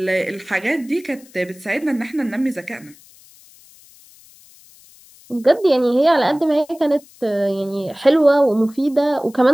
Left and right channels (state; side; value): noise; left; hiss, 26 dB below the sound